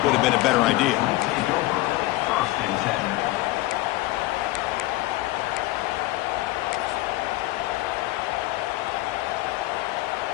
would have been a better idea.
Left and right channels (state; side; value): quieter; right; 18.5 dB